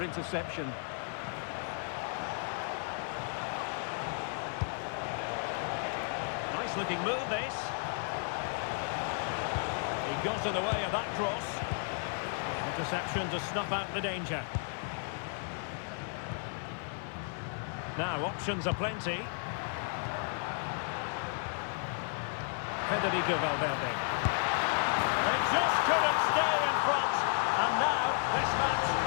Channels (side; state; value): right; silent; 55 dB below the other